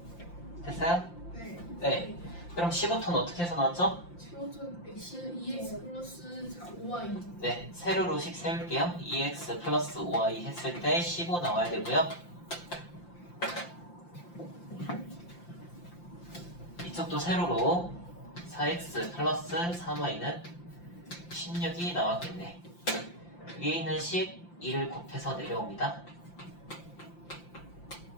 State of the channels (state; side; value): late; right; 5.8 ms